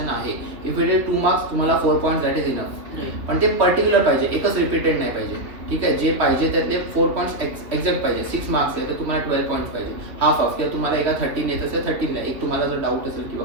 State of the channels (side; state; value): left; late; 2.9 ms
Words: आहे. इफ इट इज 2 मार्क्स, तुम्हाला 4 पॉईंट्स दॅट इज इनफ. पण ते पर्टिक्युलर पाहिजे, एकच रिपीटेड नाही पाहिजे. ठीक आहे, जे पाहिजे त्यातले 4 पॉईंट्स एक्झॅक्ट पाहिजे. 6 मार्क्स आहे तर तुम्हाला 12 पॉईंट्स पाहिजे. हाफ किंवा तुम्हाला एका 13 येत असेल 13 द्या. एक तुम्हाला जर डाऊट असेल किंवा